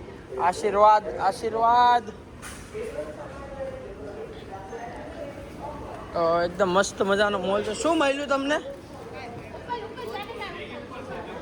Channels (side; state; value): both; identical; correlation 1.00